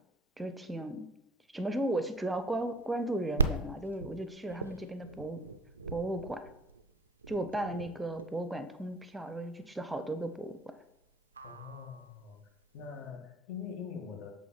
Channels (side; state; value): both; normal; correlation 0.40